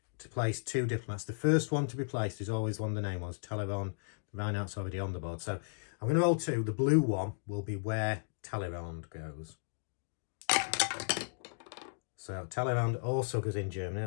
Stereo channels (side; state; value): right; silent; digital silence